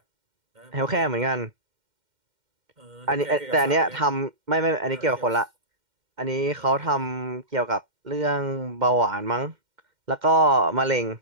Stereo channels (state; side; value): late; left; 2.1 ms